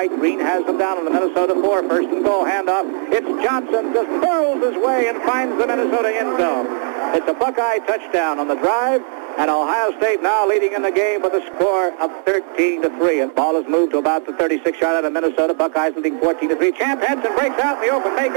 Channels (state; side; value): silent; left; digital silence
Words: Green has them down on the Minnesota 4. First and goal handoff. It's Johnson just hurls his way and finds the Minnesota end zone. It's a Buckeye touchdown on the drive, and Ohio State now leading in the game with a score of 13-3. And ball is moved to about the 36-yard line of Minnesota. Buckeyes leading 14-3. Champ Henson breaks out in the open. May